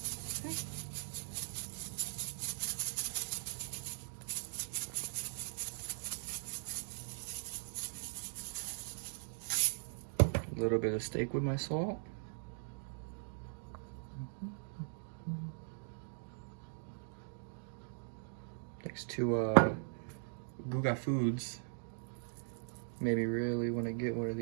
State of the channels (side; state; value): left; silent; digital silence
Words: A little bit of steak with my salt. Thanks to Guga Foods. Maybe really want to get one of